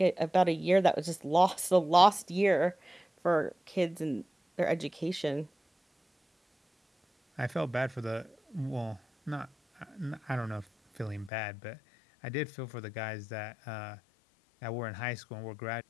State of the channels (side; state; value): right; drops out; at 11.3 s